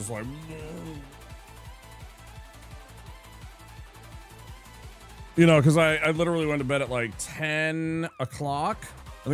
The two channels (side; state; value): both; identical; correlation 1.00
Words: like, you know, because I literally went to bed at like 10 o'clock. I